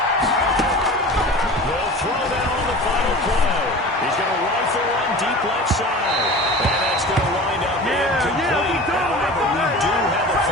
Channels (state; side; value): normal; both; correlation 0.36